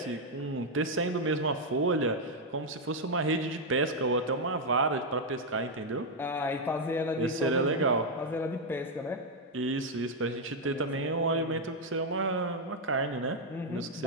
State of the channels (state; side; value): normal; both; correlation 0.00